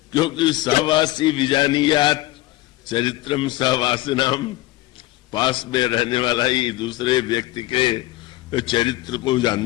क्योंकि सहवासी विजानियात चरित्रम सहवासिनाम, पास में रहने वाला ही दूसरे व्यक्ति के चरित्र को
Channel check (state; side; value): quieter; right; 17.9 dB